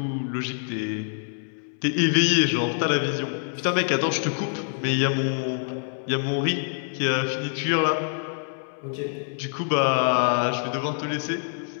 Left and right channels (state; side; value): silent; right; 61 dB below the other